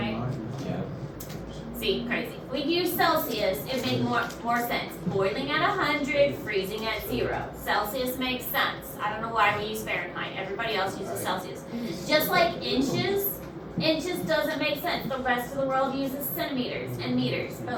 yeah. See, crazy. We use Celsius, it makes more sense. Boiling at 100, freezing at 0. Celsius makes sense. I don't know why we use Fahrenheit. Everybody else uses Celsius. Just like inches doesn't make sense. The rest of the world uses centimeters and meters.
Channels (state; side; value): identical; both; correlation 1.00